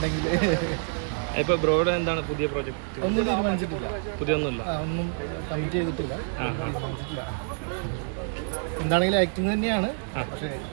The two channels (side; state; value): left; silent; 60 dB below the other